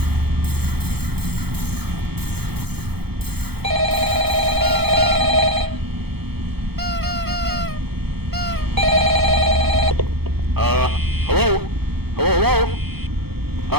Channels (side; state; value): left; late; 0.96 ms